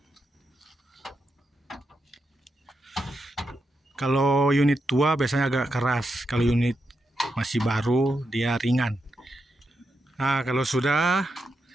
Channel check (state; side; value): normal; both; correlation 0.85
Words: Kalau unit tua biasanya agak keras, kalau unit masih baru dia ringan. Kalau sudah